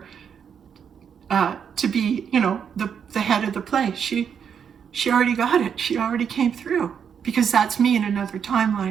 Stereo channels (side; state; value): left; quieter; 7.5 dB